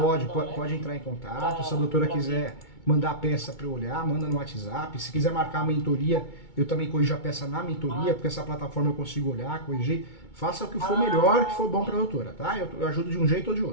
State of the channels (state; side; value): late; right; 2.2 ms